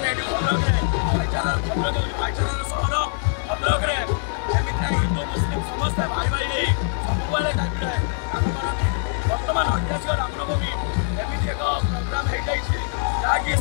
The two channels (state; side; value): silent; right; digital silence